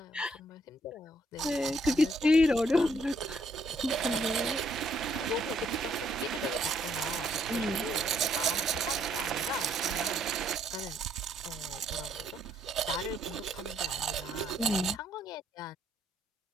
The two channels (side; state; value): both; normal; correlation 0.70